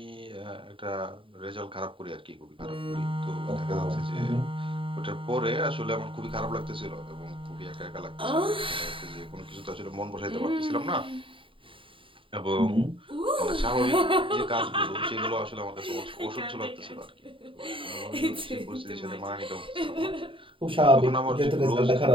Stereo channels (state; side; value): late; left; 0.25 ms